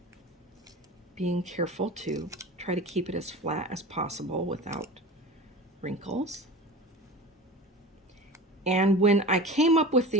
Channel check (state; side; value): normal; both; correlation 0.33